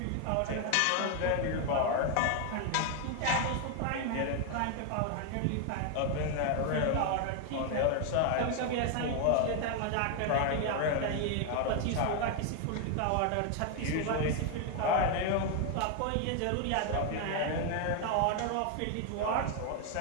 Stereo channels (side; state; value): both; different; correlation 0.01